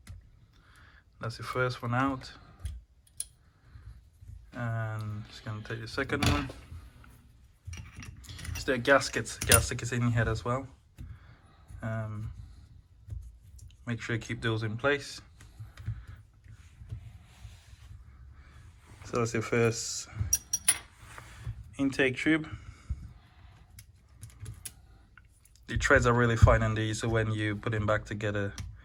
That's the first one out, and just gonna take the second one. So there are gaskets in here as well. Make sure you keep those in place. So that's your first intake tube. The threads are really fine on these, so when you put them back together,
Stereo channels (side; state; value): both; identical; correlation 1.00